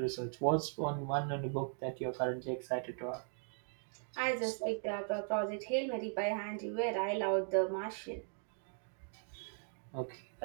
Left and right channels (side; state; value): left; silent; 52 dB below the other